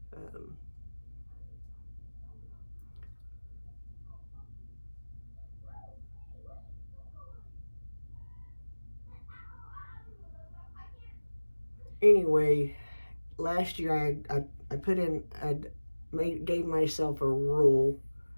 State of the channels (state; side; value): inverted; both; correlation -1.00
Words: Anyway, last year I put in, gave myself a rule